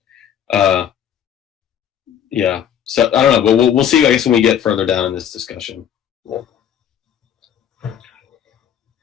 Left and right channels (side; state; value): right; quieter; 9.4 dB